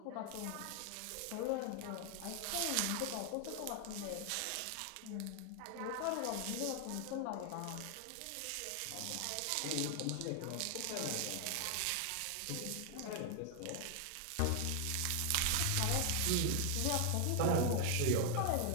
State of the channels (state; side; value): different; both; correlation 0.00